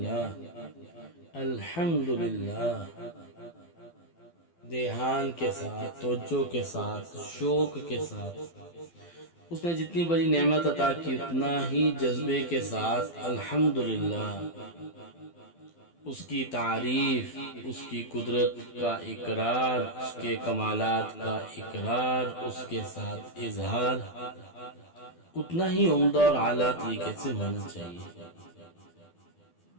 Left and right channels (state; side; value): late; right; 12 ms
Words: الحمدللہ، دھیان کے ساتھ، توجہ کے ساتھ، شوق کے ساتھ۔ اس نے جتنی بڑی نعمت عطا کی اتنا ہی جذبے کے ساتھ الحمدللہ، اس کی تعریف، اس کی قدرت کا اقرار، اس کے کمالات کا اقرار، اس کے ساتھ اظہار اتنا ہی عمدہ اور اعلیٰ طریقے سے ہونا چاہیے۔